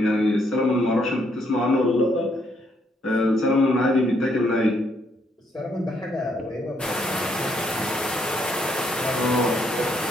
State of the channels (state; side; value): normal; both; correlation 0.73